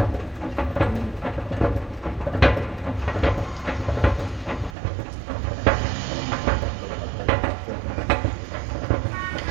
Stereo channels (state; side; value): drops out; left; at 4.8 s